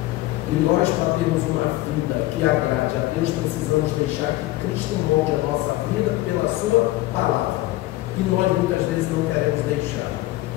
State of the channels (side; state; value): right; quieter; 17.6 dB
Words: E nós, para termos uma vida que agrade a Deus, precisamos deixar que Cristo molde a nossa vida pela sua palavra. E nós muitas vezes não queremos deixar.